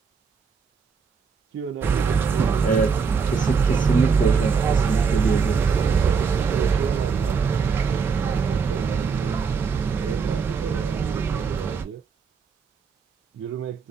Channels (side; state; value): left; quieter; 5.6 dB